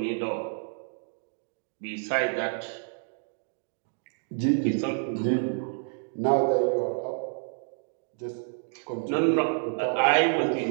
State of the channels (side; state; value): left; silent; 59 dB below the other